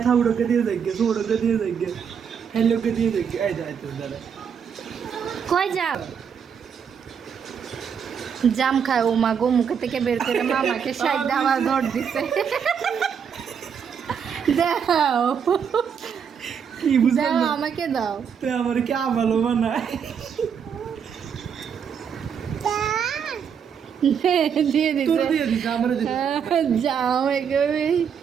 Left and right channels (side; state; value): left; quieter; 7.3 dB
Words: থাউড়োকে দিয়ে দেখবে সোড়োকে দিয়ে দেখবে হেলোকে দিয়ে দেখবে এই যায় তো দাদা কই যাও? জাম খায় ও মা গো, মুখে থেকে বের করে মামাকে সাইড আবার ধর দিছে। দাও কি বুঝলাম দাও, না আমাকে দাও। তুই আমার কি ভালো বানায় দিয়ে তোর দিছে দিয়ে দিস আমার দিয়ে জাম, একেবারে